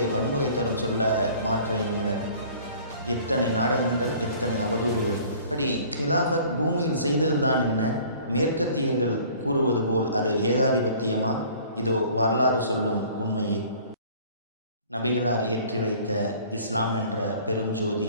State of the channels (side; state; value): both; inverted; correlation -0.50